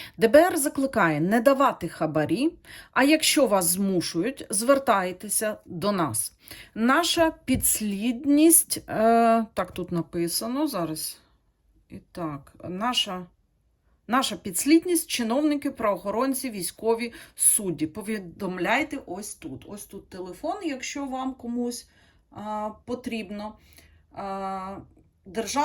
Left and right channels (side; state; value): both; identical; correlation 1.00